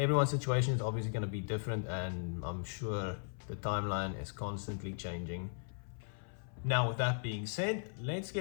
situation is obviously going to be different, and I'm sure the timeline is constantly changing. Now, with that being said, let's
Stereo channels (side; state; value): right; silent; 53 dB below the other